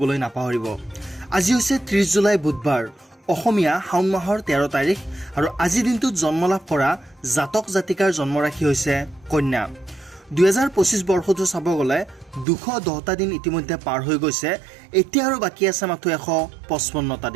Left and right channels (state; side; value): drops out; left; at 12.5 s